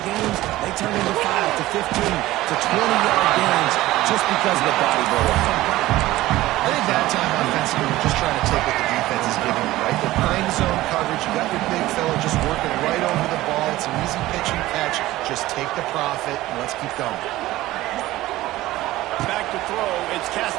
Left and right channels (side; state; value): left; quieter; 16.8 dB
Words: games, they turn into 5 to 15 to 20-yard gains just because of the body blow. I think that time offensively, we're just trying to take what the defense is giving them, right? They're playing zone coverage. You got your big fella just working right over the ball. It's an easy pitch and catch. Just take the profit, and let's keep going. Back to throw, it's